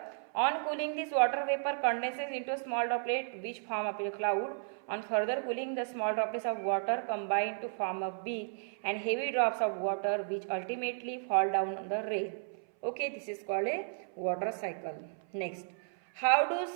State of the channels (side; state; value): left; silent; 55 dB below the other